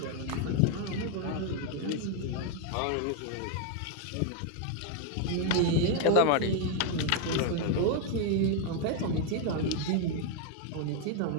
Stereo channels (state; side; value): different; both; correlation 0.01